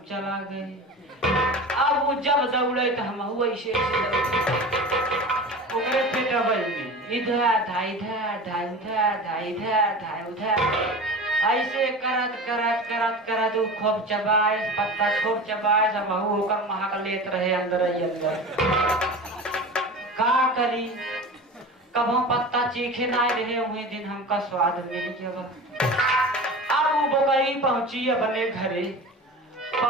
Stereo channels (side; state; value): both; normal; correlation 0.33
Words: चला गए। अब वो जब दौड़े तो हम वैसे ओकरे पेटवा में इधर धा इधर धा उधर धा इधर धा उधर, ऐसे करत वो खूब चबाए, पत्ता खूब चबाए, सब होकर महक लेत रहे अंदर ही अंदर। का करी, कबो पत्ता चीखे ना रहे, वही दिन हमका स्वाद मिल गया। अब वो बकरी पहुंची अपने घरे,